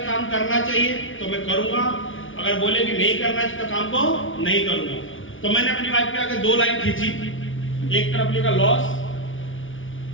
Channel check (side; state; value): right; late; 0.57 ms